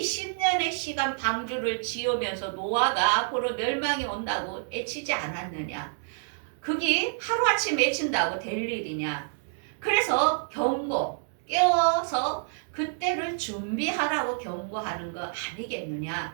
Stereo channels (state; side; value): silent; left; digital silence